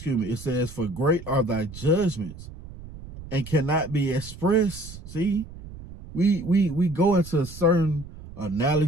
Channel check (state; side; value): noise; right; rumble, 15 dB below the sound